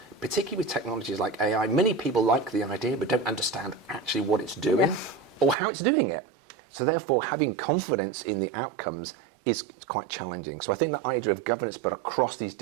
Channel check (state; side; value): drops out; left; at 5.6 s